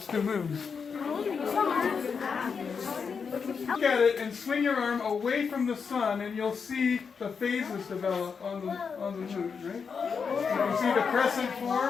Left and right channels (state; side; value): quieter; right; 5.9 dB